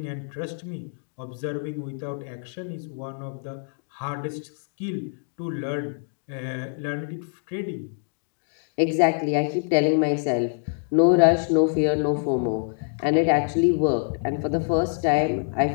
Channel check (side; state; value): right; silent; digital silence